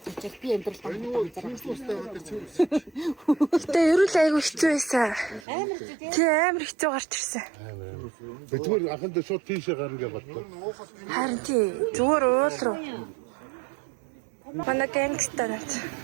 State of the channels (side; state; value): left; drops out; at 5.5 s